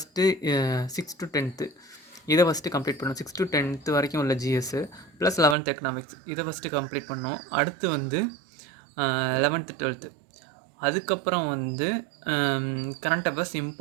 6 to 10th இதை ஃபஸ்ட்டு கம்ப்ளீட் பண்ணோம். 6 to 10th வரைக்கும் உள்ள ஜிஎஸ்ஸு ப்ளஸ் 11th எக்கனாமிக்ஸ் இதை ஃபஸ்ட்டு கம்ப்ளீட் பண்ணோம். அடுத்து வந்து 11th 12th, அதுக்கப்புறம் வந்து கரண்ட் அஃபேர்ஸ்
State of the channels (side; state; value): left; drops out; at 5.6 s